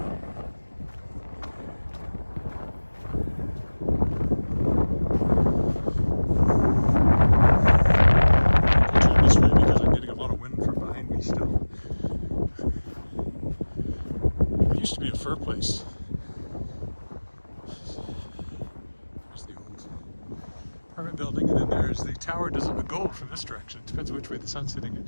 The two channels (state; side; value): inverted; both; correlation -1.00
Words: Used to be a fur place. There's the old apartment building, and then there's the tower. Doesn't look gold from this direction. It depends which way the sun's hitting